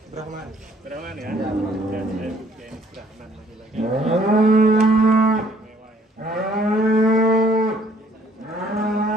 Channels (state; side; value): normal; both; correlation 0.61